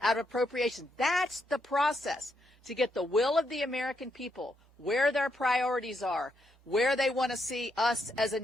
out of appropriations. That's the process to get the will of the American people, where their priorities are, where they want to see us as a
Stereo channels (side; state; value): both; normal; correlation 0.79